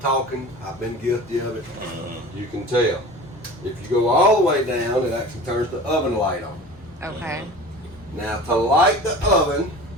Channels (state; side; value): normal; both; correlation 0.38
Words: I've been guilty of it, you can tell. If you go all the way down, it actually turns the oven light on. Okay. Now to light the oven